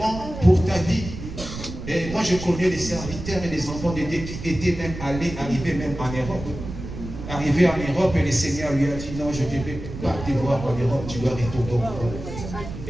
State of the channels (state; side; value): noise; right; rumble, 9 dB below the sound